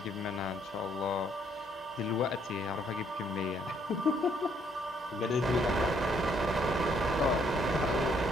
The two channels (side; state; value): both; normal; correlation 0.68